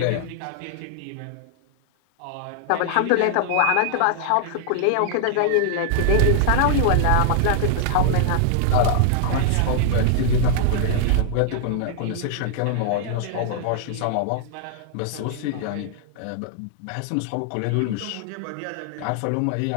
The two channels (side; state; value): both; different; correlation -0.01